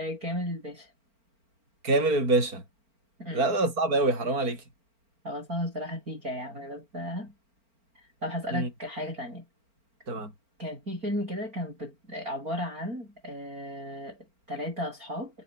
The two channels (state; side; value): late; left; 4.4 ms